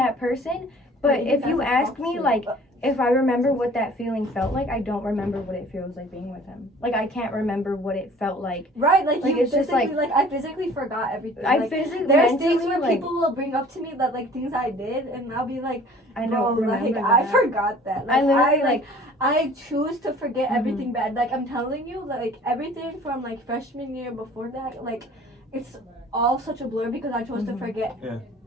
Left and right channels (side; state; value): both; normal; correlation 0.50